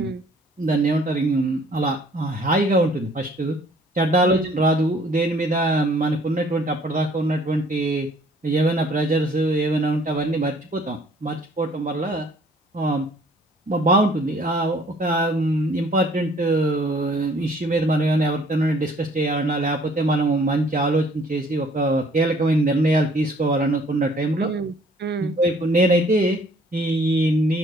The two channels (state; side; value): normal; both; correlation 0.58